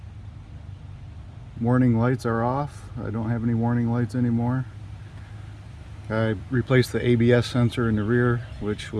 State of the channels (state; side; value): identical; both; correlation 1.00